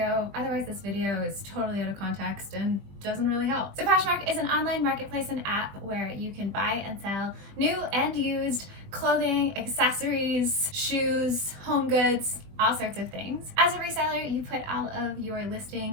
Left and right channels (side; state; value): left; late; 20 ms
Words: Otherwise, this video is totally out of context and doesn't really help. So Poshmark is an online marketplace and app where you can buy and sell new and used clothing, accessories, shoes, home goods, all sorts of things. As a reseller, you put all of your